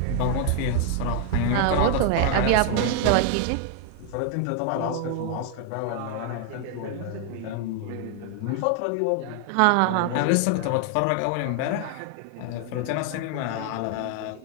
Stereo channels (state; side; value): different; both; correlation 0.00